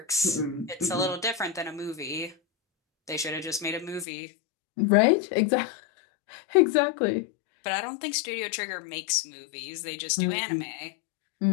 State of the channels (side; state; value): right; drops out; at 4.0 s